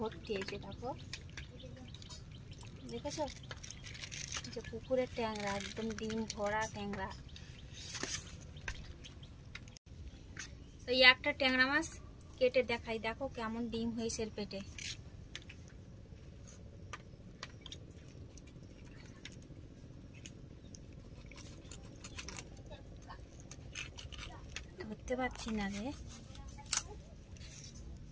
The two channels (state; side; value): identical; both; correlation 1.00